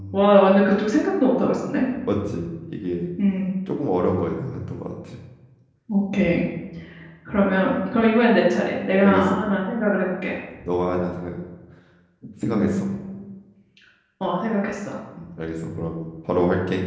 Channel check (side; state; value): both; identical; correlation 1.00